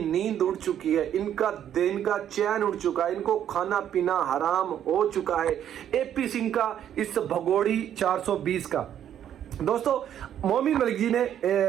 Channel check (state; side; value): quieter; left; 10.2 dB